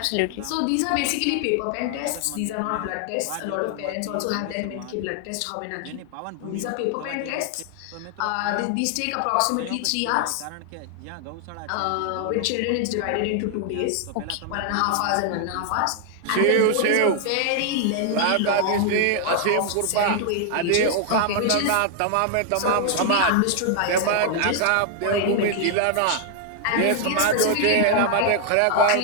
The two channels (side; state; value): both; different; correlation 0.00